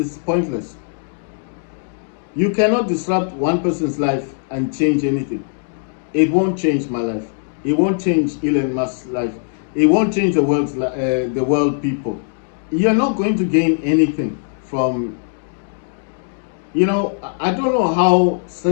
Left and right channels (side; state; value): right; silent; digital silence